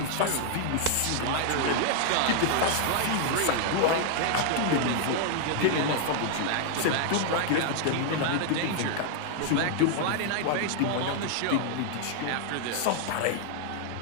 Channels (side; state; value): both; different; correlation 0.00